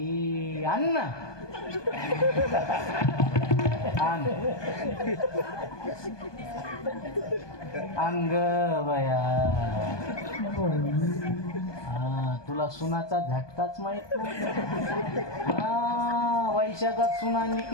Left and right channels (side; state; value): right; late; 1.2 ms